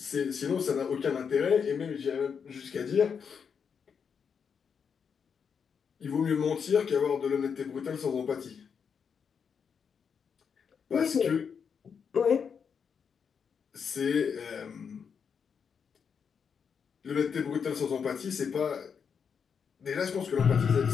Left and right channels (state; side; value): quieter; right; 6.6 dB